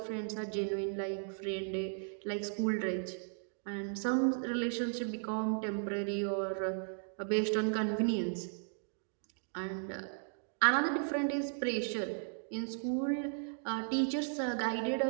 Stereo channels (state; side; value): silent; left; digital silence